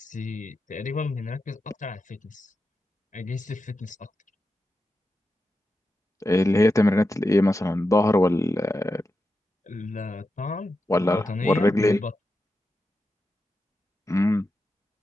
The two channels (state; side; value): normal; both; correlation 0.89